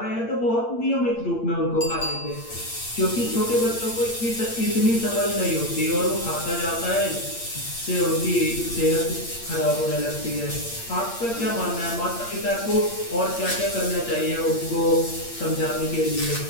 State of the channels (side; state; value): right; late; 8.7 ms